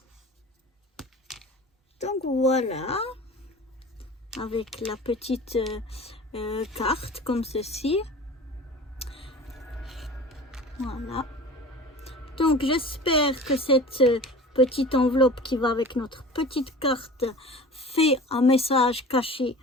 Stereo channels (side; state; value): both; normal; correlation 0.39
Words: Donc voilà. Avec la petite carte comme ceci. Voilà. Donc j'espère que cette petite enveloppe qui va avec notre petite carte fait un message caché